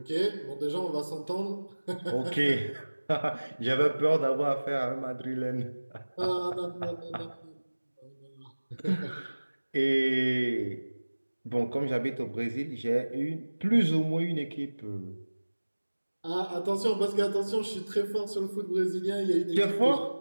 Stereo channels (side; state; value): both; inverted; correlation -1.00